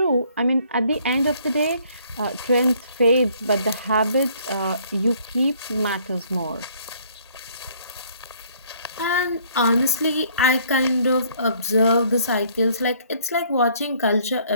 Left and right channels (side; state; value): both; inverted; correlation -0.62